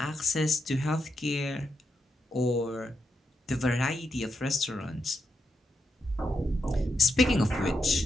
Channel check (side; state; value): both; normal; correlation 0.83